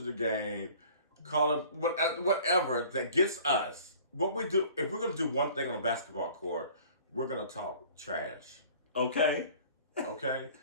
the game, calling whatever that gets us. What we do, if we're going to do one thing on a basketball court, we're going to talk trash. Okay. Okay?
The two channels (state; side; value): inverted; both; correlation -0.49